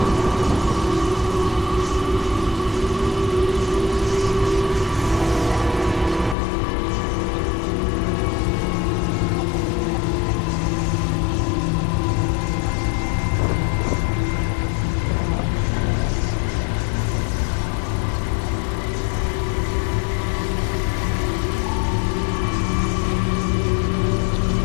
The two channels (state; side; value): drops out; right; at 6.4 s